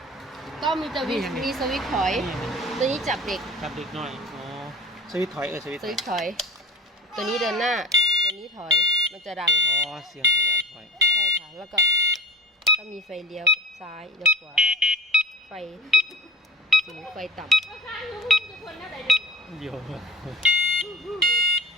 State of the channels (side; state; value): both; normal; correlation 0.36